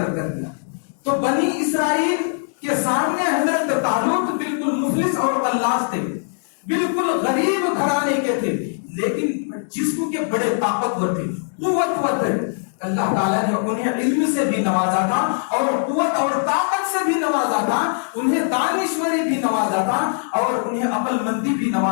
کر دیا، تو بنی اسرائیل کے سامنے حضرت طالوت بالکل مفلس اور قلاص تھے، بالکل غریب گھرانے کے تھے، لیکن جسم کے بڑے طاقتور تھے، قوتور تھے۔ اللہ تعالیٰ نے انہیں علم سے بھی نوازا تھا اور قوت اور طاقت سے بھی نوازا تھا، انہیں دانشوری بھی نوازا تھا اور انہیں عقل مندی بھی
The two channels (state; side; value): silent; right; digital silence